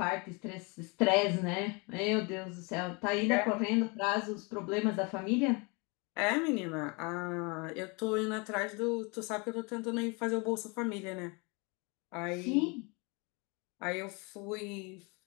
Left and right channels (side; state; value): right; quieter; 30.0 dB